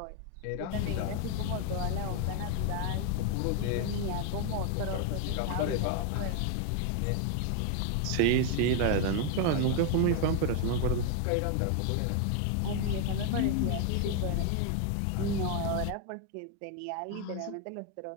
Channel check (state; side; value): different; both; correlation 0.01